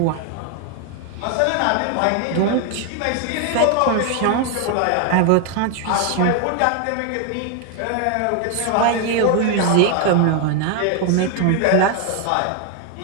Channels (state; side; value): different; both; correlation 0.00